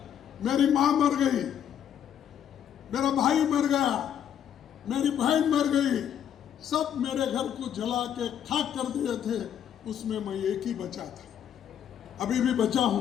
मेरी माँ मर गई, मेरा भाई मर गया, मेरी बहन मर गई, सब मेरे घर को जला के खाक कर दिए थे। उसमें मैं एक ही बचा था, अभी भी बचा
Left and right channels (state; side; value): quieter; right; 9.4 dB